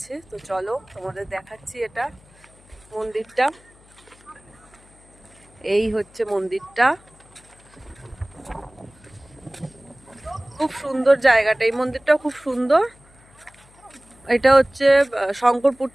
তো চলো তোমাদের দেখাচ্ছি। এটা মন্দিরটা, এই হচ্ছে মন্দিরটা। খুব সুন্দর জায়গাটা, এই মন্দিরটাও খুব সুন্দর। এটা হচ্ছে শঙ্করপুর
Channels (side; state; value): left; noise; hum, 27 dB below the sound